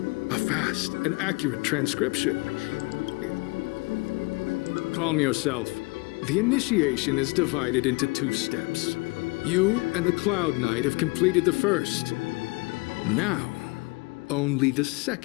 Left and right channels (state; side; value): quieter; right; 26.9 dB